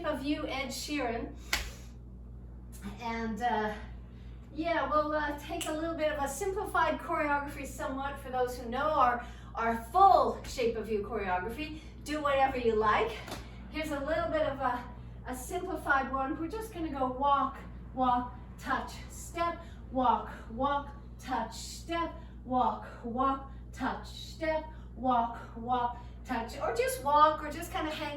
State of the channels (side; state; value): both; identical; correlation 1.00